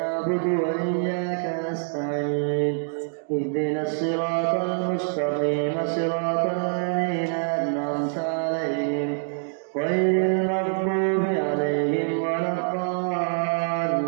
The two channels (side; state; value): left; silent; digital silence